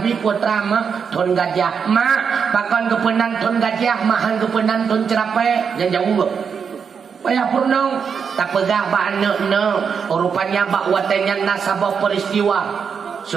putra mah thon gajah. Mak pakon kepenan thon gajah, mahan kepenan thon cerape. Jangan jauh. Payah purnong tak pegah ba anak na. Rupanya ba watenya nasabah peristiwa.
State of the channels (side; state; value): left; quieter; 6.5 dB